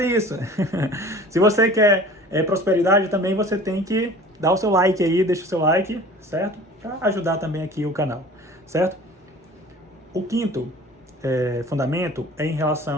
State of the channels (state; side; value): normal; both; correlation 0.44